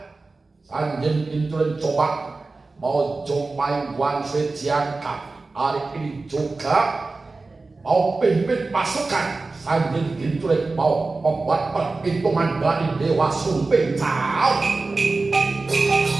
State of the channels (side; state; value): left; quieter; 3.6 dB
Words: Sanjin Kintulik coba mau jumpai Wan Sui Jiangka hari ini juga mau pimpin pasukan. Sanjin Kintulik mau membuat perhitungan dari Dewa Sumping. Cao.